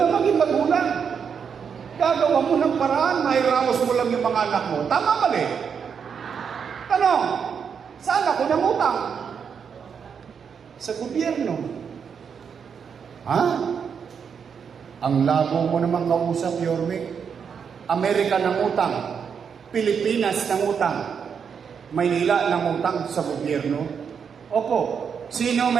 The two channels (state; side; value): quieter; left; 6.8 dB